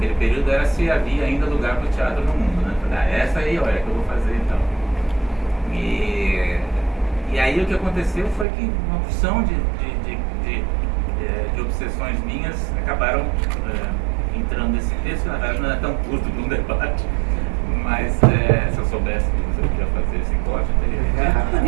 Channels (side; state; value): left; drops out; at 8.5 s